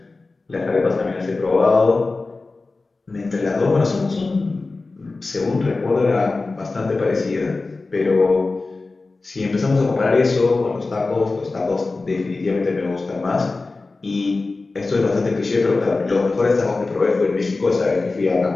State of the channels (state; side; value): quieter; right; 3.6 dB